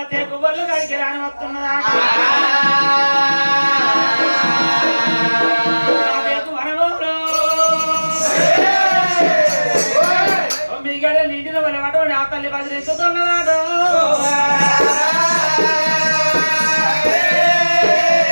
తేకు బొల్లు గడికి రాని వస్తున్నదా వనమూరు 9 గడియలు నిండిన వాళ్ళు అటువంటి ఆ తల్లి బదిలిస్తున్నదాడు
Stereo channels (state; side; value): inverted; both; correlation -1.00